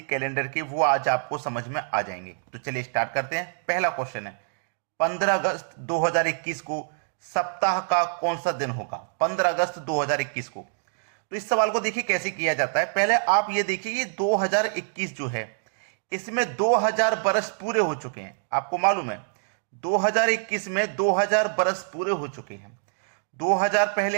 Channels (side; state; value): left; silent; digital silence